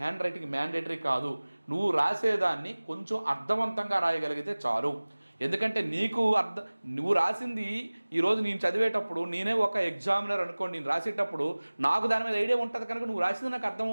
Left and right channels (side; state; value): both; inverted; correlation -1.00